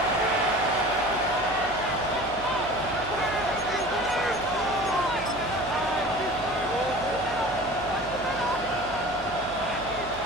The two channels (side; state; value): right; noise; hum, 15 dB below the sound